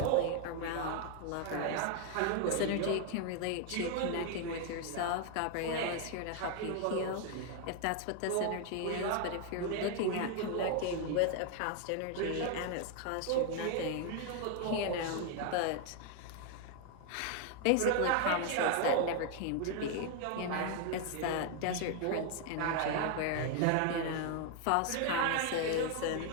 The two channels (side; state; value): both; different; correlation 0.00